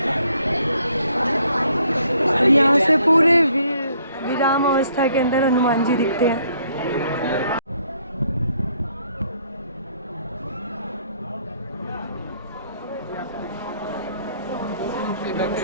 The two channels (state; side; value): inverted; both; correlation -0.66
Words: और यहाँ से पूरे विराम अवस्था के अंदर हनुमान जी दिखते हैं।